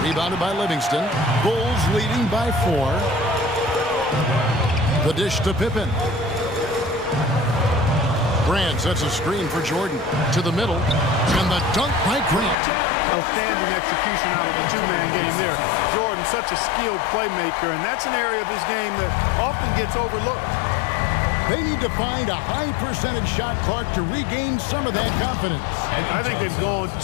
Rebounded by Livingston. Bulls leading by 4. The dish to Pippen. Grant sets a screen for Jordan. To the middle. And the dunk by Grant. Outstanding execution out of the two-man game there. Jordan, such a skilled playmaker, and that's an area of his game that often gets overlooked. They need to find a high percentage shot, Clark, to regain some of that confidence. I think they've gone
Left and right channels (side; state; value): right; drops out; at 12.6 s